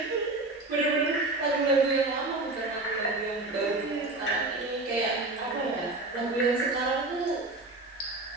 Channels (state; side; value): quieter; left; 3.0 dB